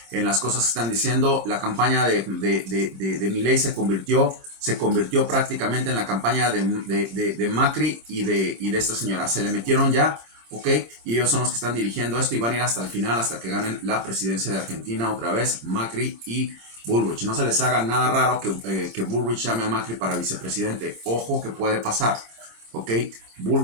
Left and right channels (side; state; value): left; late; 26 ms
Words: en las cosas que están diciendo. La campaña de Milei se convirtió prácticamente en la campaña de Macri y de esta señora. Se le metieron ya, ok, y ellos son los que están dirigiendo esto y van a ir hasta el final, hasta que ganen la presidencia de Argentina otra vez, Macri y Bullrich. No se les haga nada raro que Bullrich llame a Macri para vicepresidente. Ojo que puede pasar. Ok,